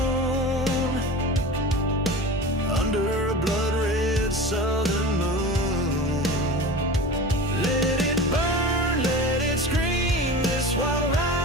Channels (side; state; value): both; normal; correlation 0.33